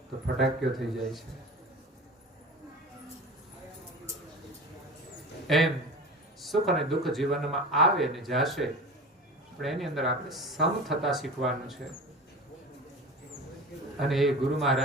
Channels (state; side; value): normal; both; correlation 0.33